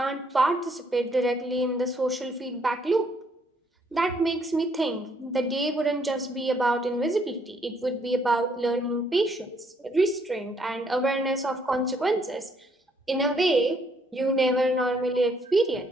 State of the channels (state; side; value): normal; both; correlation 0.68